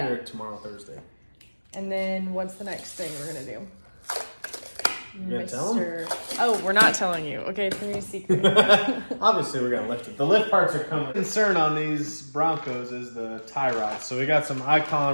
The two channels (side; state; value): both; inverted; correlation -1.00